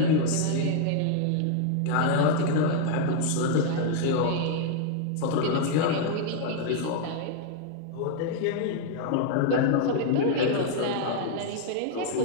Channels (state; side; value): different; both; correlation 0.00